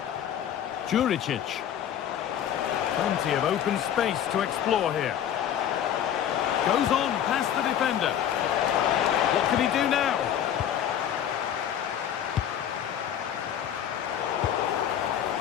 Juricic. Plenty of open space to explore here. Goes on past the defender. What can he do now?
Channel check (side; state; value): right; quieter; 9.9 dB